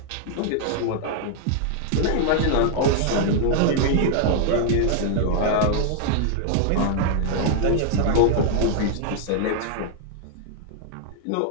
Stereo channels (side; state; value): both; different; correlation 0.00